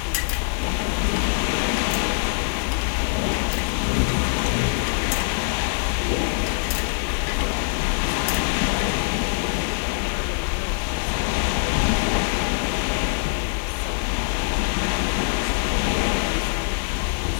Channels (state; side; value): silent; right; digital silence